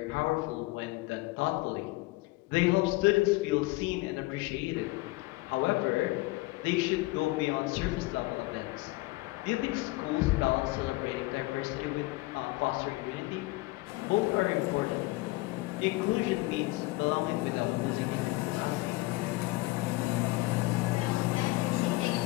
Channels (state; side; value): quieter; right; 21.3 dB